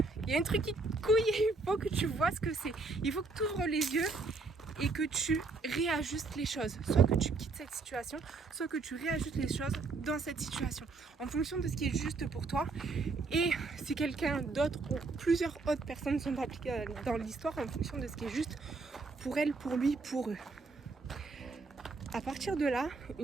Il y a un truc qui couille et il faut que tu vois ce que c'est. Il faut que tu ouvres les yeux et que tu réajustes les choses. Soit que tu quittes cette situation, soit que tu réajustes les choses dans cette situation. En fonction de ce qui est juste pour toi. Et si quelqu'un d'autre ou plusieurs autres personnes sont impliquées dans l'histoire, en fonction de ce qui est juste pour elle, pour lui, pour eux. À partir de là,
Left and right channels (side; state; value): left; quieter; 3.8 dB